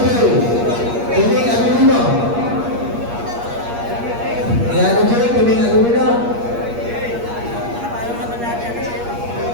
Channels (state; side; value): late; left; 8.5 ms